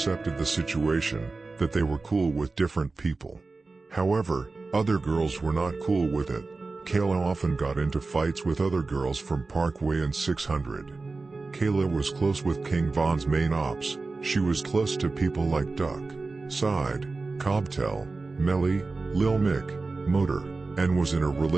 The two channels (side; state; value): left; quieter; 3.7 dB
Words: the situation, that they were cool with different people. However, other girls were not cool with it. Kayla often got into fights with other girls from Parkway and 600. Kayla was close with King Von's main ops. She was close to people like Duck, Side, Cobtel, Melly, Lil Mick, Motor, and was in a